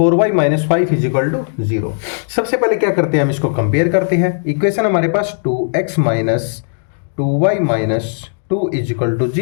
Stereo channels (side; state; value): right; silent; digital silence